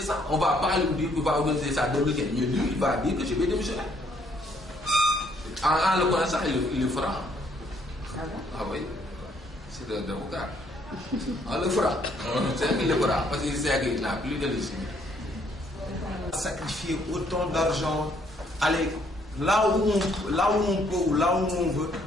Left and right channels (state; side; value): normal; both; correlation 0.67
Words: On ne va pas lui dire qu'il va organiser ça en 2015. Mais lui, il va dire que je vais démissionner. En le connaissant, il le fera. Ah bon? Ah oui. C'est un avocat. On le fera. C'est qu'il le fera. Parce qu'il sait qu'il n'a plus de légitimité. Sacrifier autant d'argent, aller là où on peut ou là où on veut,